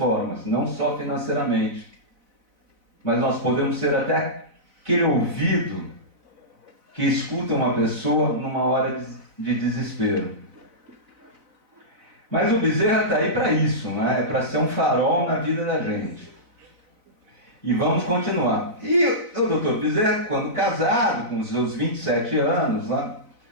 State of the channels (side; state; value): left; late; 4.0 ms